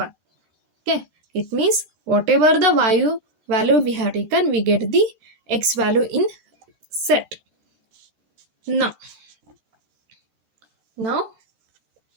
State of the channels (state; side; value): late; left; 13 ms